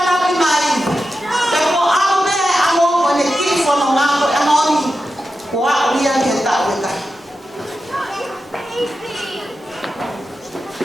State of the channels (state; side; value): normal; both; correlation 0.91